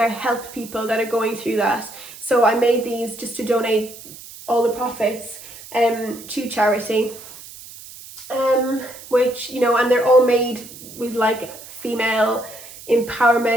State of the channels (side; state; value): right; noise; hiss, 16 dB below the sound